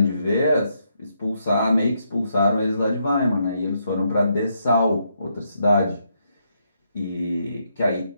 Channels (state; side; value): inverted; both; correlation -0.77